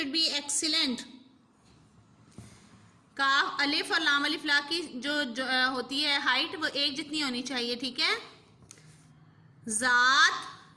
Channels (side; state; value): both; identical; correlation 1.00